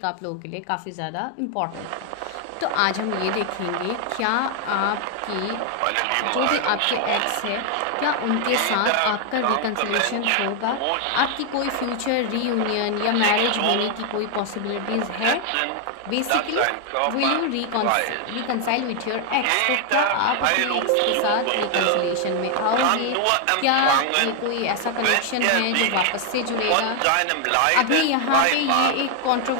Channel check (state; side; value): different; both; correlation 0.00